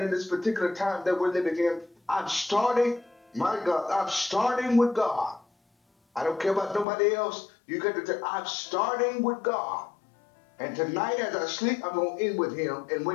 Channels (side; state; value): right; drops out; at 6.9 s